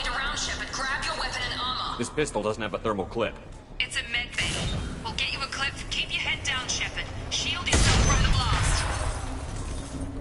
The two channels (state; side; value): identical; both; correlation 1.00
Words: around, Shepard. Grab your weapon and armor. This pistol doesn't have a thermal clip. It's a med bay. We'll get you a clip. Keep your head down, Shepard. Shield yourself from the blast.